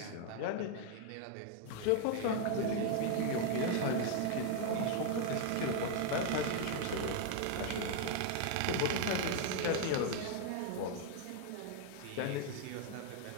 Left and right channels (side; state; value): both; different; correlation 0.00